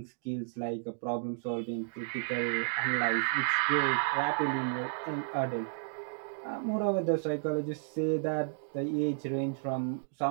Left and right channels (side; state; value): left; silent; digital silence